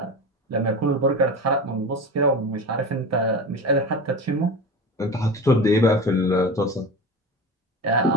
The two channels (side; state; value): both; normal; correlation 0.29